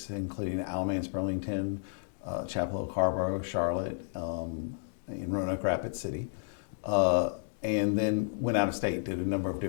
including Alamance, Burlington, Chapel Hill, Carrboro, Charlotte, in Roanoke Rapids City. And then went out of state, did a number of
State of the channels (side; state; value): right; silent; digital silence